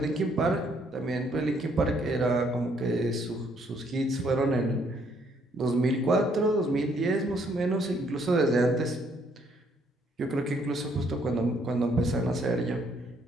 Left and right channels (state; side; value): normal; both; correlation 0.68